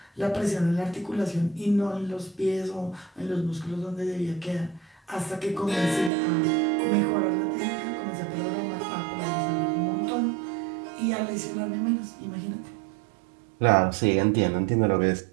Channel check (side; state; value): left; drops out; at 6.1 s